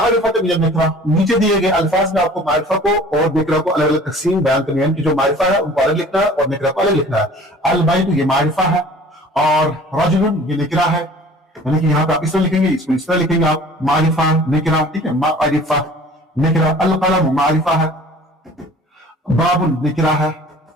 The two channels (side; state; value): both; normal; correlation 0.47